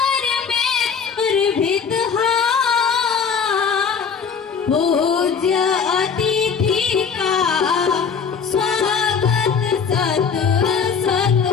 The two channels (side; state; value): right; quieter; 6.3 dB